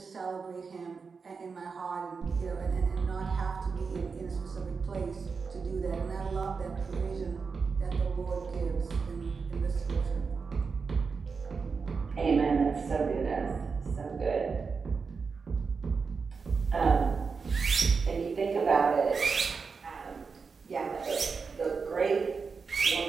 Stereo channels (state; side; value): quieter; left; 5.1 dB